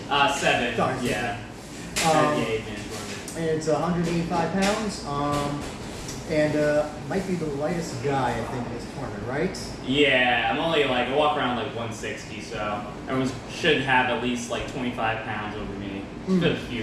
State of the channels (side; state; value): both; identical; correlation 1.00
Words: 7. Sorry, yeah. And it's 185 pounds, might be the lightest guy, I think, in this tournament, right? Yeah, I walk around 160, so everyone should have at least 25 pounds over me. There's a few